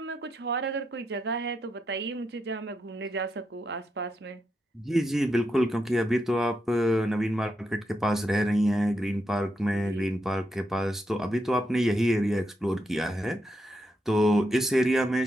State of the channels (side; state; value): both; normal; correlation 0.83